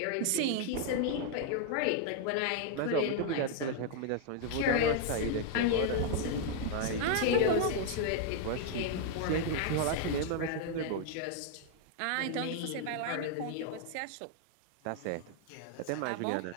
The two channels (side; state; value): both; different; correlation 0.00